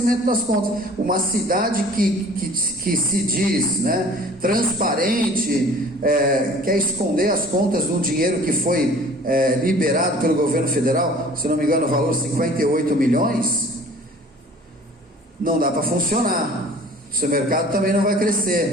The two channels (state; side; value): normal; both; correlation 0.48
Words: das contas. Uma cidade que se diz, né, transparente, quer esconder as contas de um dinheiro que foi liberado pelo governo federal, se não me engano o valor 58 milhões, não dá para funcionar. O seu mercado também não vai